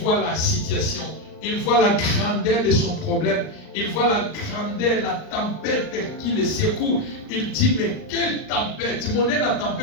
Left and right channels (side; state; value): right; late; 39 ms